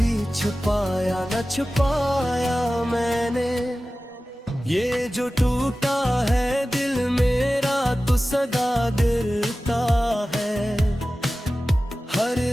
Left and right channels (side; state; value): both; normal; correlation 0.96